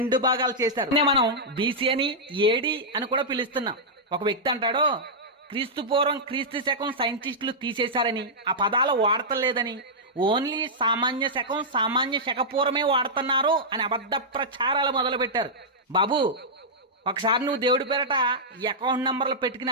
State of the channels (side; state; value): both; normal; correlation -0.10